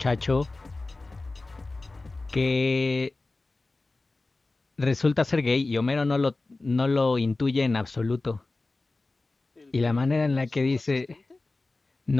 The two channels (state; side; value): quieter; right; 3.3 dB